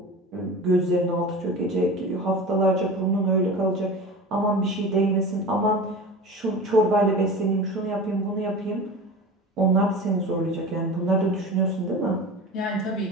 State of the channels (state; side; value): normal; both; correlation 0.33